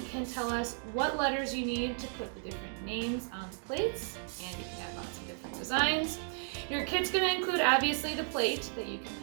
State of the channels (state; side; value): silent; left; 55 dB below the other